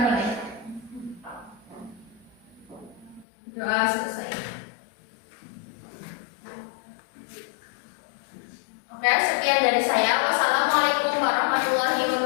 Doa selesai. Oke, sekian dari saya. Wassalamualaikum warahmatullahi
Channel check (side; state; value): right; drops out; at 3.2 s